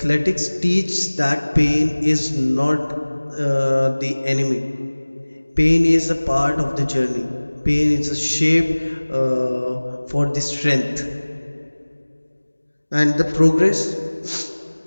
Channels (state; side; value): inverted; both; correlation -1.00